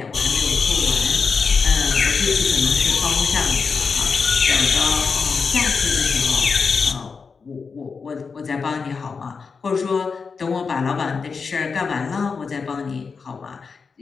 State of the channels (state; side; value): quieter; right; 5.2 dB